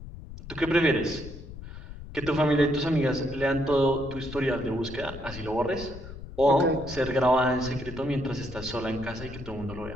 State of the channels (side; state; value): left; noise; rumble, 12 dB below the sound